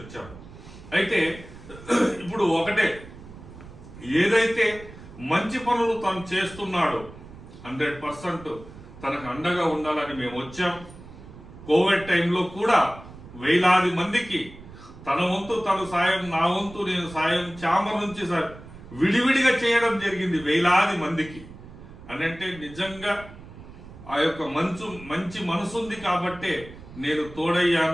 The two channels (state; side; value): noise; right; rumble, 17 dB below the sound